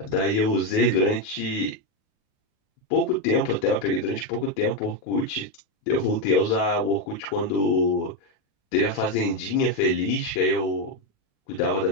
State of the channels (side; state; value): right; late; 38 ms